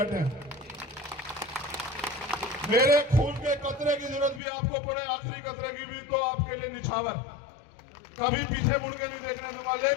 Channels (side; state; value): right; drops out; at 4.4 s